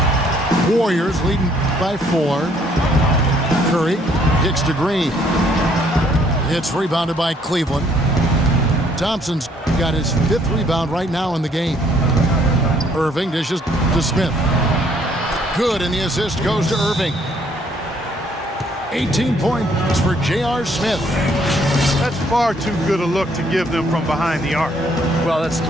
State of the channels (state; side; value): normal; both; correlation 0.65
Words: Warriors leading by 4. Curry kicks to Green. It's rebounded by Cleveland. Thompson's got his 5th rebound right now in the game. Irving dishes to Smith. Good, and the assist goes to Irving. 18 points for J.R. Smith. That's far too good a look to give them from behind the arc. Well, that's